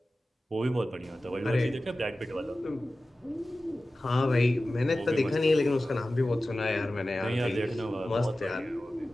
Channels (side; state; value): both; normal; correlation 0.95